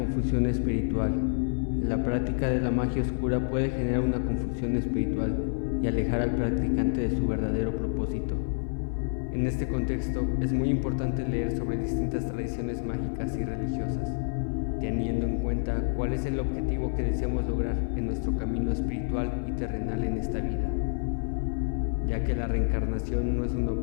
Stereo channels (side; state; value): right; silent; 56 dB below the other